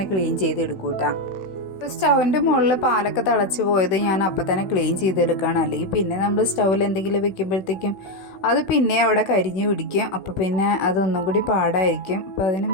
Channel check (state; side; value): late; right; 16 ms